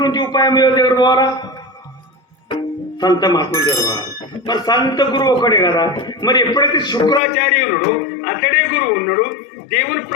ఉపాయం ఎవరు పోవాలా? సంత మహాత్ములు ఎవరు పోవాలి? మరి సంత గురువు ఒకడే కదా. మరి ఎప్పుడైతే శుక్రాచార్య ఉన్నాడు అతడే గురువు ఉన్నాడు. దేవుని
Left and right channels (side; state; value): right; drops out; at 7.2 s